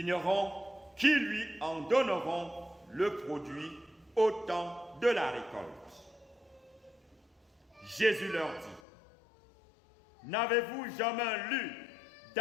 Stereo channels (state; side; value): drops out; right; at 8.8 s